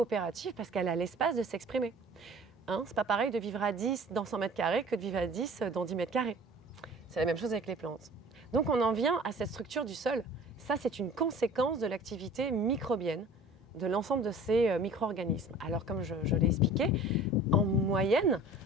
parce qu'elle a l'espace de s'exprimer. Hein, c'est pas pareil de vivre à 10 dans 100 mètres carrés que de vivre à 10 dans 10 mètres carrés. C'est la même chose avec les plantes. Donc on en vient à cette structure du sol. Ça, c'est une conséquence de l'activité microbienne de l'ensemble de ces micro-organismes. Alors comme je l'ai expliqué, en moyenne,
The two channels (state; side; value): normal; both; correlation 0.45